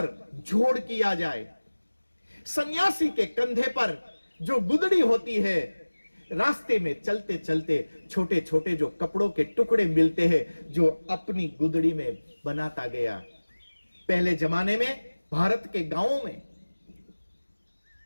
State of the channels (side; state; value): both; inverted; correlation -1.00